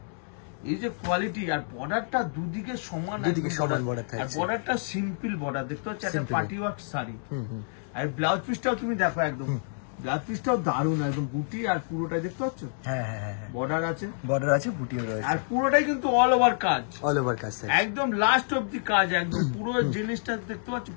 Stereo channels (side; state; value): right; silent; digital silence